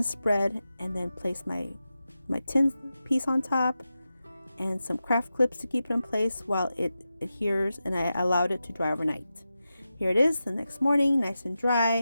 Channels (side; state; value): both; inverted; correlation -0.91